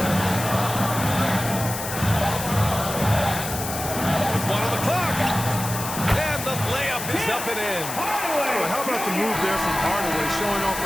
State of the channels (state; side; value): noise; left; hiss, 7 dB below the sound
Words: With 1 on the clock. And the layup is up and in. Well, how about the move there from Hardaway, showing off